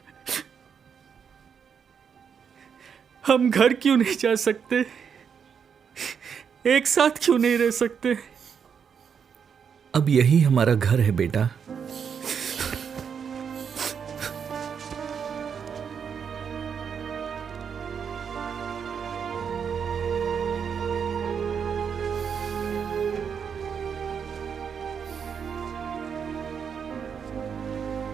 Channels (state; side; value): quieter; left; 7.0 dB